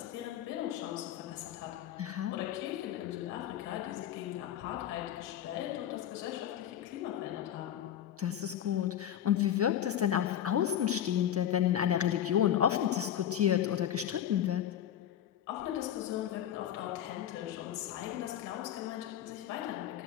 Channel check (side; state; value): right; quieter; 10.6 dB